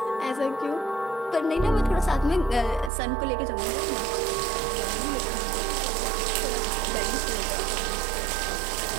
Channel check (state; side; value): drops out; left; at 2.9 s